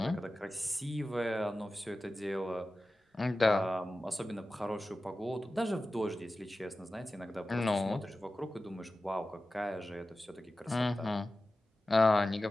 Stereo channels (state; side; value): normal; both; correlation 0.95